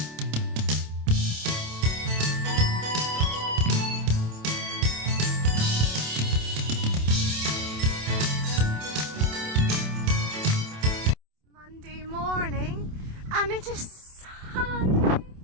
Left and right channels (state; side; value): late; left; 27 ms